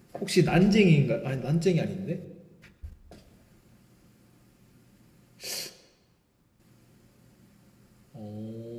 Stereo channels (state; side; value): identical; both; correlation 1.00